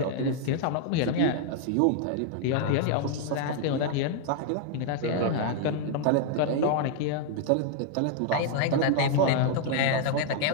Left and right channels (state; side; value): different; both; correlation 0.00